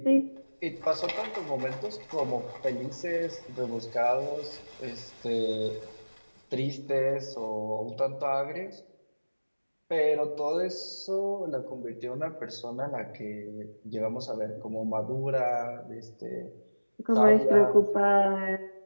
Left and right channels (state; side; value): inverted; both; correlation -1.00